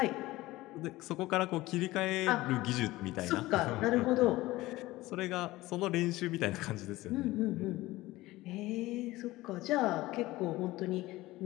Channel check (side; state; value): right; quieter; 18.4 dB